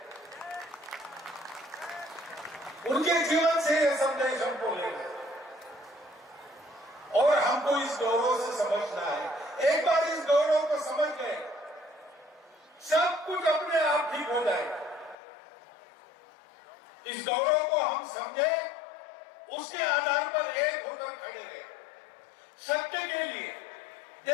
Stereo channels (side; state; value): right; drops out; at 15.2 s